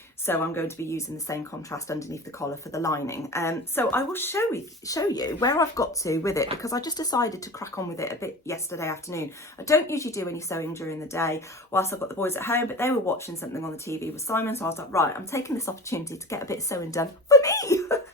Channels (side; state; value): both; normal; correlation 0.33